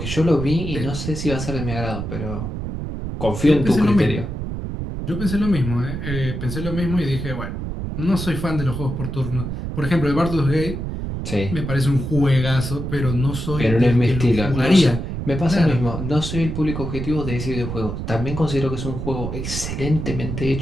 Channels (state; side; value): noise; right; rumble, 5 dB below the sound